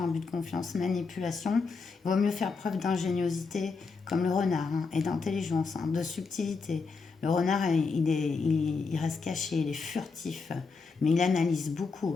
abus de confiance, manipulation, il vaut mieux faire preuve d'ingéniosité, comme le renard, hein, et d'intelligence, hein, de subtilité. Le renard, il reste caché, il est furtif, mais il analyse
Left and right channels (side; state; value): right; quieter; 4.6 dB